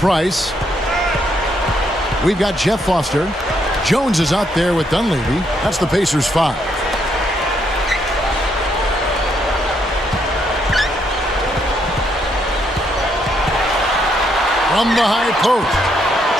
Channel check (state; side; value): normal; both; correlation 0.74